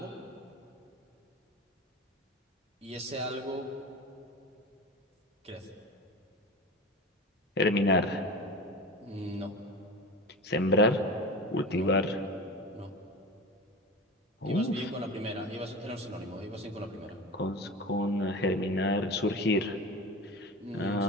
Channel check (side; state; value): both; normal; correlation 0.30